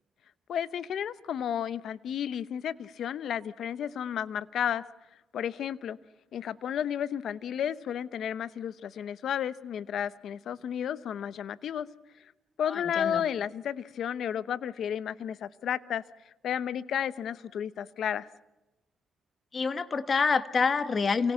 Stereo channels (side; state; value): right; quieter; 7.1 dB